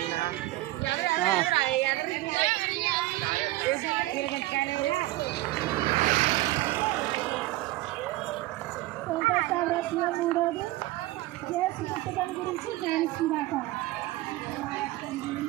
మూడోది చేసి పుస్తకం గురించి ధ్యానిస్తుందాక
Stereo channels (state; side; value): quieter; left; 17.9 dB